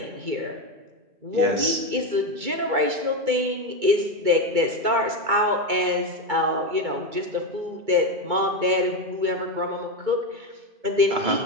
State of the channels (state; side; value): late; left; 2.3 ms